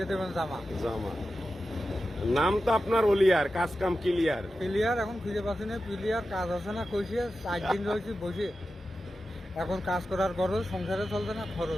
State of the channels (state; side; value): normal; both; correlation 0.92